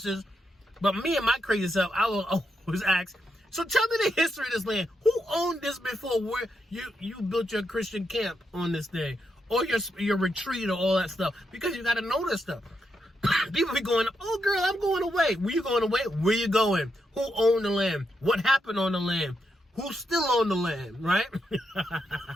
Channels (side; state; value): both; normal; correlation 0.82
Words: But me and my crazy self, I will always ask, so tell me the history of this land. Who owned this before where you built your Christian camp on this thing? Or your retreat or all that stuff? Because you got to know this stuff. People be going, oh girl, I'm going away. Where you going away? Where you going? Who owned the land? What happened on the land? Who still owned the land, right?